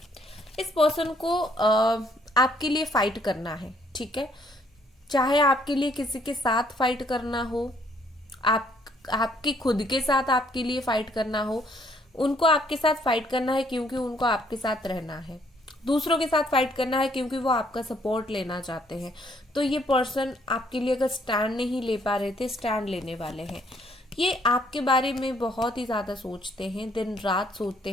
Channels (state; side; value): normal; both; correlation 0.66